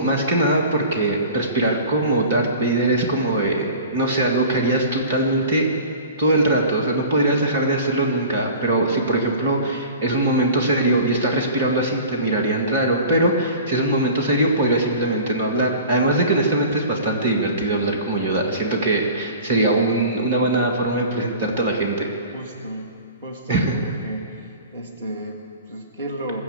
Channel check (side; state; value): both; inverted; correlation -0.41